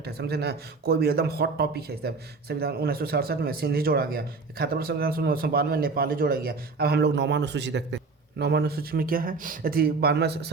है, समझे ना, कोई भी एकदम हॉट टॉपिक है। सब संविधान 1967 में सिंधी जोड़ा गया, 71वां संविधान 1992 में नेपाली जोड़ा गया। अब हम लोग 9वां अनुसूची देखते हैं। 9वां अनुसूची में क्या है, यदि 92वां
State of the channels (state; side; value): quieter; left; 4.1 dB